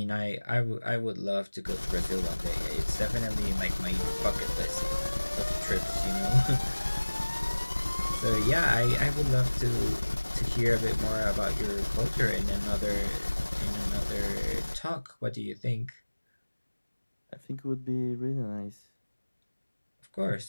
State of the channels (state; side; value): inverted; both; correlation -1.00